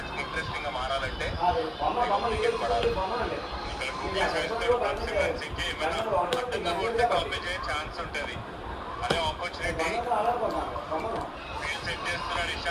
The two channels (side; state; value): both; identical; correlation 1.00